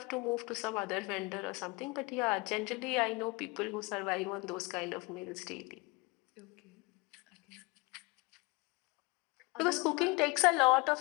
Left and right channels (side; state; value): right; quieter; 26.2 dB